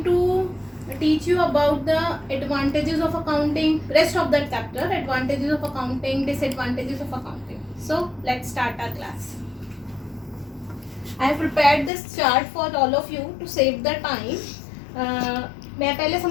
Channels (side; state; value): right; drops out; at 11.9 s